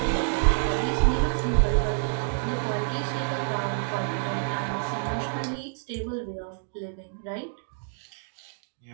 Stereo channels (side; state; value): left; silent; digital silence